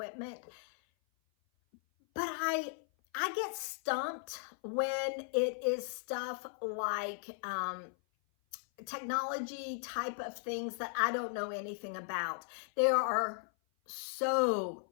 but I get stumped when it is stuff like technology type of things that I don't know anything about. There are so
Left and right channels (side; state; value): right; silent; 53 dB below the other